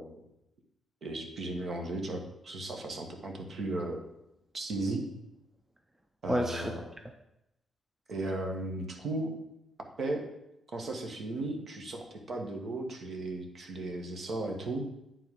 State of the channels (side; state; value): both; normal; correlation 0.72